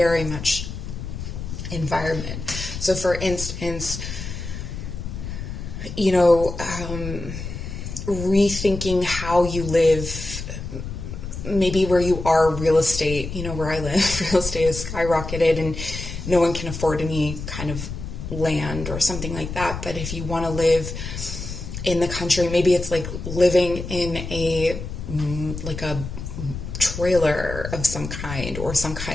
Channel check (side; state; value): left; noise; rumble, 7 dB below the sound